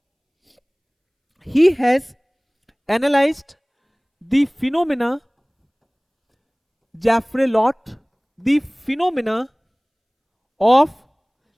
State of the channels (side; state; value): both; identical; correlation 1.00